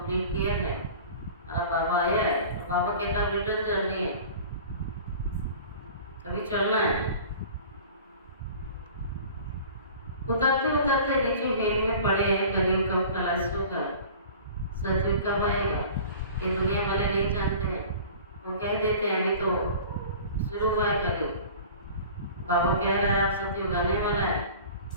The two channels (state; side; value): inverted; both; correlation -0.42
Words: किया है। अब बाबा आया है, तो बाबा कहता है रिटर्न जर्नी है, कभी चलना है। उतरते उतरते नीचे हेल में पड़े हैं। कलयुग कब खलास होगा, सतयुग कब आएगा, ये दुनिया वाले नहीं जानते हैं। वो कह देते हैं अभी तो शुरू हुआ है कलयुग, बाबा कह रहा है आप सतयुग आने वाला है।